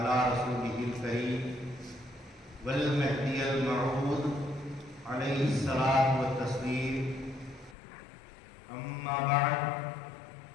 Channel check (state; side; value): drops out; right; at 7.8 s